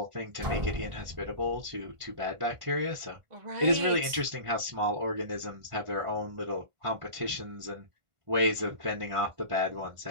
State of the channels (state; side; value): late; left; 1.5 ms